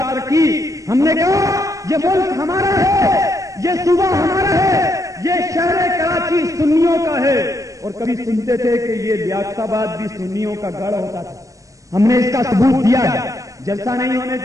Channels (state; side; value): late; left; 0.16 ms